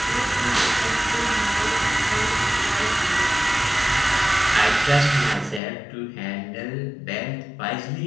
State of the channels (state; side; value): drops out; right; at 5.6 s